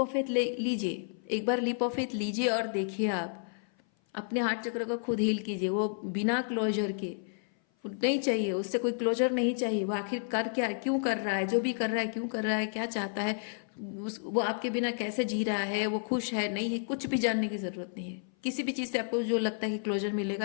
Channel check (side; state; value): right; silent; 56 dB below the other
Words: फेथ लीजिए, एक बार लीप ऑफ फेथ लीजिए, और देखिए आप अपने हार्ट चक्र को खुद हील कीजिए, वो बिना क्लोजर के, नहीं चाहिए, उससे कोई क्लोजर नहीं चाहिए। वो आखिर कर क्या, क्यों कर रहा है, जो भी कर रहा है क्यों कर रहा है, क्या चाहता है, वो आपके बिना कैसे जी रहा है, वो खुश है नहीं है, कुछ भी जानने की ज़रूरत नहीं है। किसी भी चीज़ से आपको जो लगता है कि क्लोजर